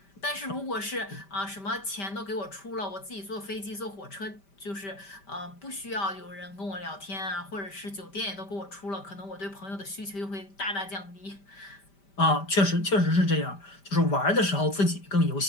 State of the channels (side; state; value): right; late; 5.1 ms